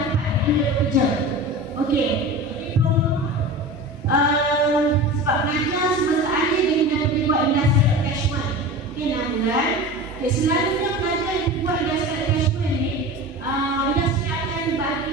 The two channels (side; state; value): both; normal; correlation 0.32